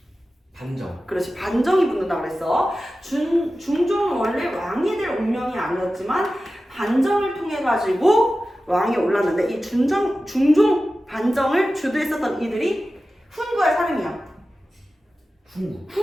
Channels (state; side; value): normal; both; correlation 0.94